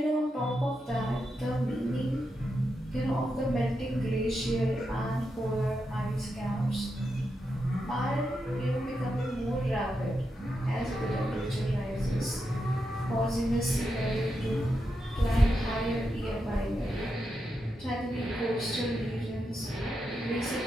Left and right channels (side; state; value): both; normal; correlation 0.86